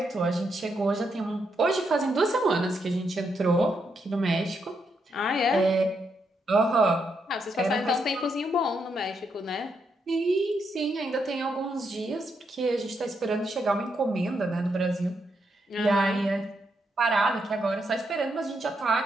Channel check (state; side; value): normal; both; correlation 0.80